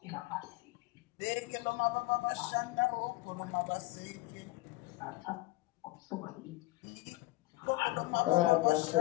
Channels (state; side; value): quieter; right; 20.0 dB